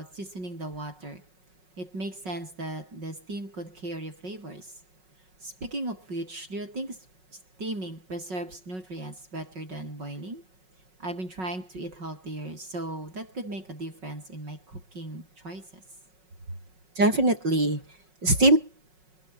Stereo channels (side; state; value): left; late; 5.4 ms